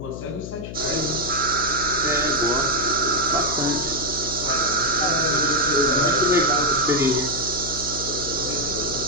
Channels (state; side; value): noise; left; hum, 9 dB below the sound